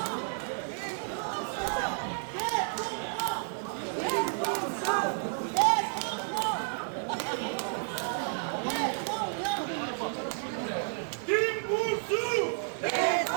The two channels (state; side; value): silent; left; digital silence